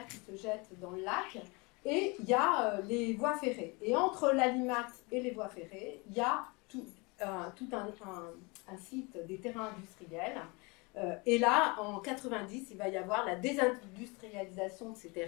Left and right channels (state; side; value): quieter; right; 27.9 dB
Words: qui se jette dans le lac, et il y a les voies ferrées. Et entre l'Alimat et les voies ferrées, il y a tout un site des terrains industriels. Et là, en 90, il va y avoir la désindustrialisation de ces